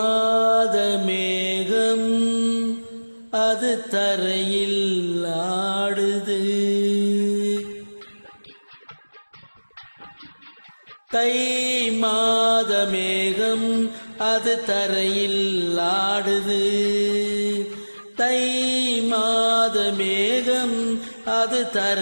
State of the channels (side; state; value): both; inverted; correlation -1.00